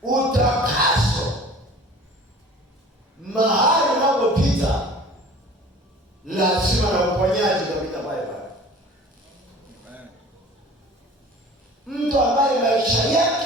utakaso mahali unapopita lazima na uponyaji utapita pale pale. Mtu ambaye maisha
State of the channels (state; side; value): normal; both; correlation 0.44